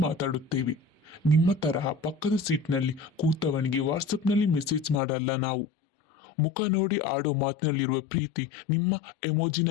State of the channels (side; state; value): right; drops out; at 5.0 s